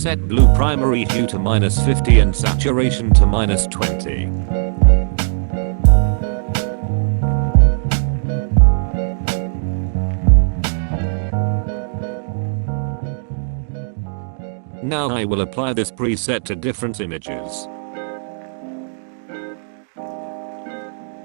blue primary hue to -50 and saturation to -20. Now I will apply this preset to different images.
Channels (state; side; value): silent; left; digital silence